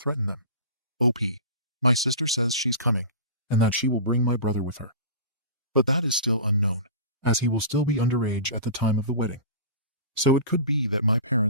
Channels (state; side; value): inverted; both; correlation -0.34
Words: them? OP. My sister says she's coming, and that she will bring my brother with her. But that is still unknown, as he will still be underage at the time of the wedding. So it could be that my